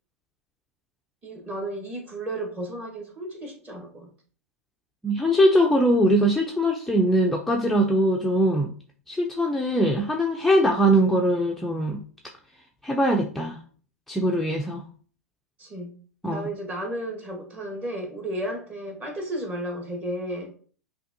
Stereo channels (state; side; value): normal; both; correlation 0.58